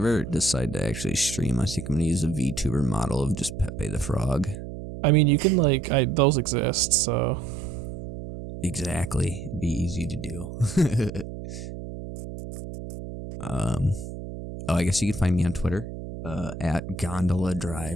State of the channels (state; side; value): noise; right; hum, 9 dB below the sound